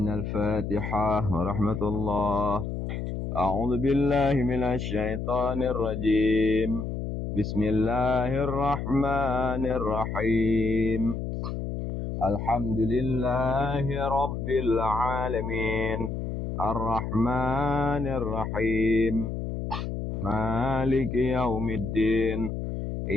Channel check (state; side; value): noise; left; hum, 4 dB below the sound